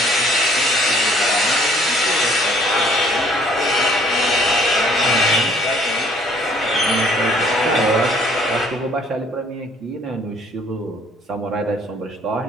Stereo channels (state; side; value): normal; both; correlation 0.59